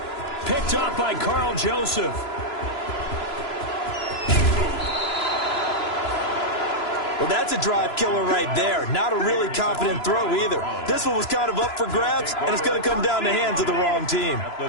Picked up by Carl Joseph. Well, that's a drive killer right there. Not a really confident throw either. This one was kind of up for grabs, and it's going to come down the hands of the wrong team. At the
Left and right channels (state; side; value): late; right; 3.0 ms